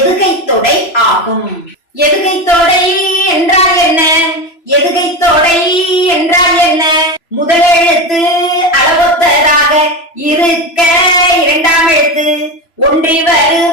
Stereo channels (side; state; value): right; late; 3.0 ms